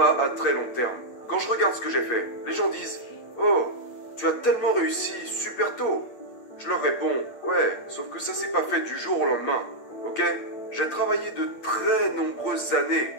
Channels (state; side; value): late; right; 8.4 ms